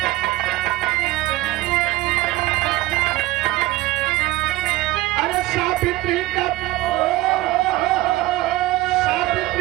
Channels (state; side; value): quieter; left; 18.0 dB